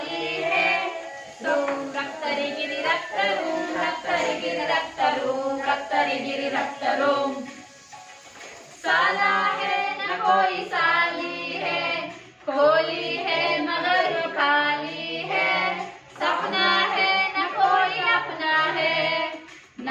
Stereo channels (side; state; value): both; identical; correlation 1.00